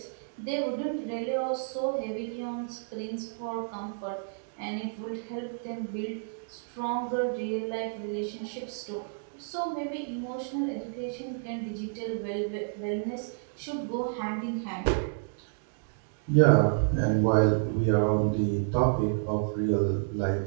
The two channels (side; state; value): left; silent; digital silence